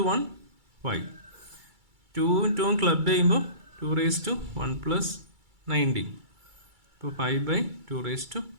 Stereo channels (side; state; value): left; late; 2.3 ms